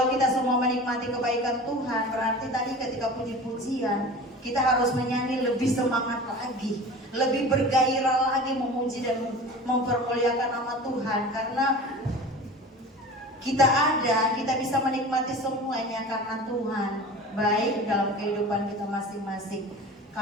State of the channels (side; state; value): both; normal; correlation 0.37